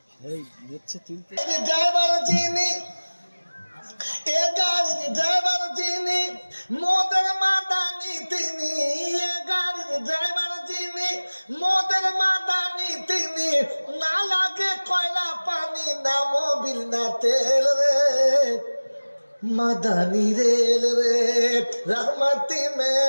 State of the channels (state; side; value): inverted; both; correlation -1.00